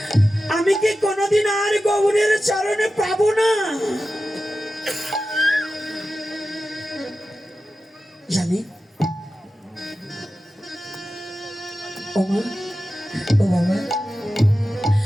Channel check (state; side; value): normal; both; correlation 0.93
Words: আমি কি কোনোদিন আর গৌরের চরণে পাবো না? জানি ও মা, ও বাবা,